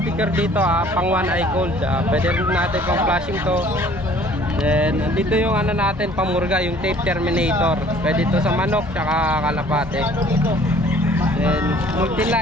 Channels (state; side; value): normal; both; correlation 0.54